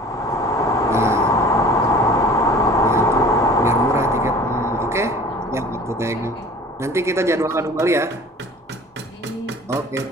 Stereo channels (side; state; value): both; normal; correlation 0.45